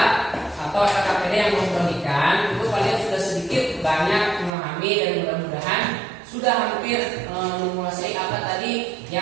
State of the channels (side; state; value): left; drops out; at 4.5 s